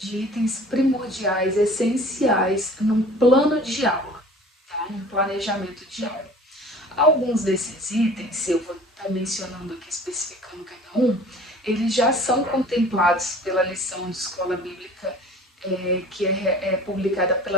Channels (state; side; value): normal; both; correlation 0.46